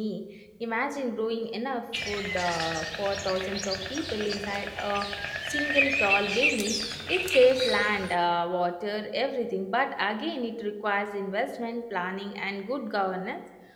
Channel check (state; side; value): identical; both; correlation 1.00